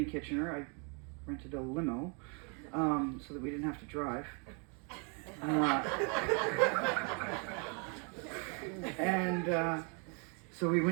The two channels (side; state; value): left; quieter; 36.2 dB